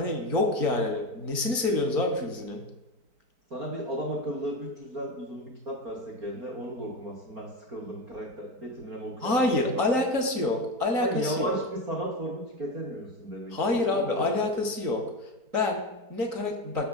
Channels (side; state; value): left; late; 4.5 ms